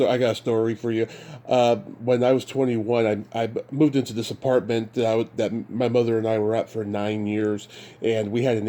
story for you. When I was 21, I moved into this apartment that my mother and I were at for 9 years, and we had an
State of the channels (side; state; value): both; identical; correlation 1.00